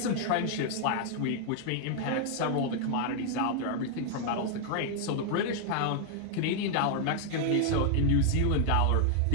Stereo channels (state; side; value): different; both; correlation 0.00